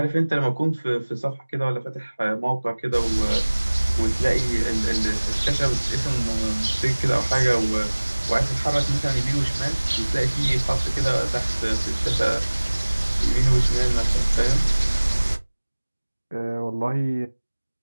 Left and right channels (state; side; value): inverted; both; correlation -1.00